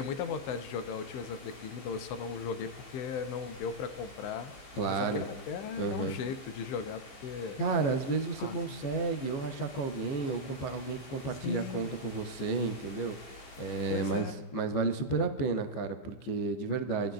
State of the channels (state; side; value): late; right; 15 ms